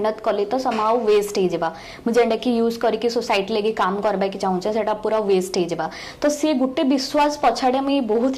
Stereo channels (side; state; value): both; identical; correlation 1.00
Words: कली तो समाउ वेस्ट हे जेबा मैं जेंटा कि यूज करी कि सोसाइटी लेके काम करबा कि चाहूचे सेटा पूरा वेस्ट हे जेबा तो से गुटे विश्वास पछाड़े मुझे